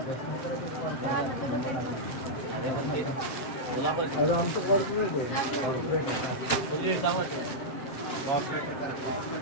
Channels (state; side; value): late; right; 7.6 ms